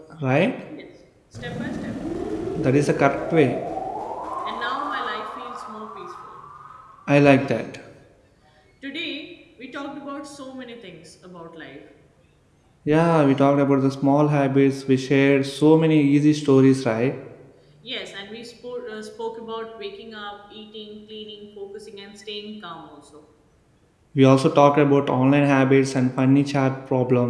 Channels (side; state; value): both; identical; correlation 1.00